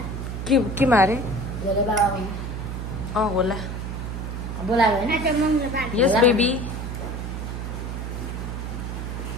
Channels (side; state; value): right; noise; hum, 5 dB below the sound